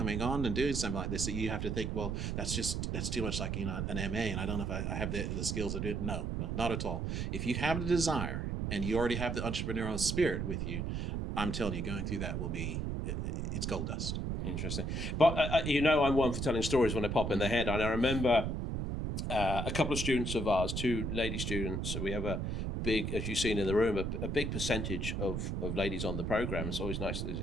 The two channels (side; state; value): right; noise; rumble, 1 dB below the sound